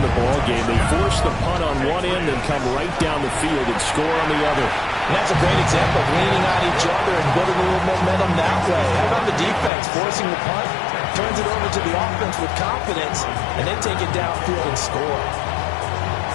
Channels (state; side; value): drops out; right; at 9.7 s